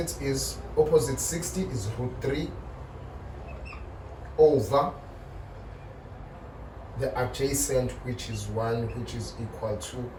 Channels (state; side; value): identical; both; correlation 1.00